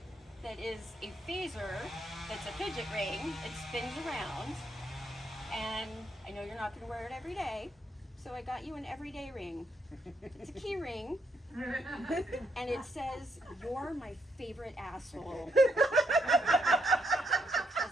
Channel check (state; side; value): normal; both; correlation 0.76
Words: that is a phaser that's a fidget ring. It spins around. And I know you're not going to wear it every day, so I got you an everyday ring. It's a key ring, and it says, "You're my favorite asshole." Because